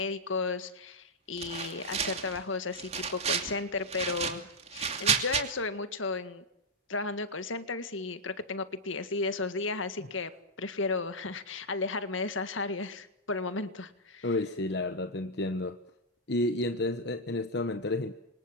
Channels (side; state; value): both; normal; correlation -0.03